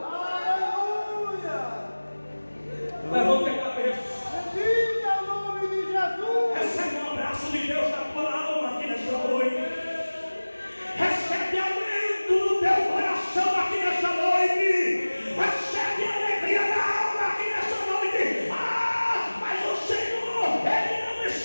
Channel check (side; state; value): both; inverted; correlation -1.00